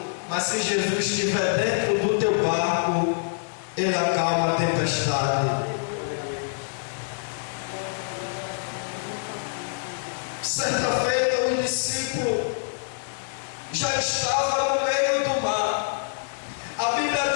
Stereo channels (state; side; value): silent; right; 61 dB below the other